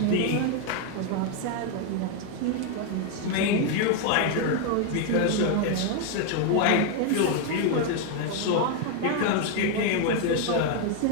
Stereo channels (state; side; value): different; both; correlation 0.01